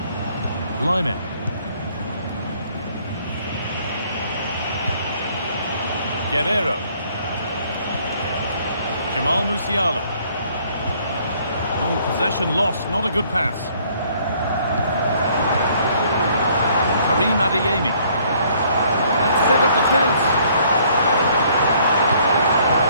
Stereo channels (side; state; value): both; inverted; correlation -0.62